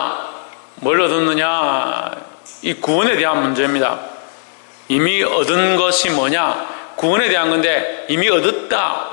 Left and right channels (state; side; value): silent; right; digital silence